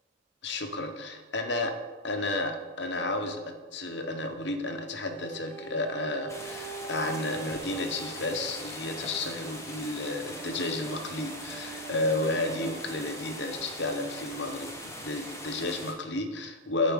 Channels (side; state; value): both; normal; correlation 0.02